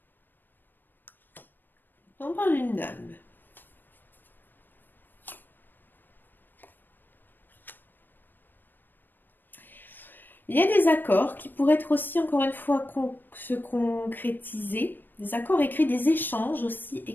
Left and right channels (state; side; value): late; right; 0.093 ms